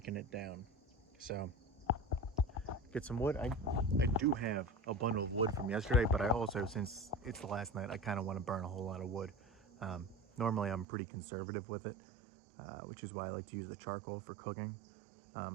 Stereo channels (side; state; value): left; drops out; at 10.9 s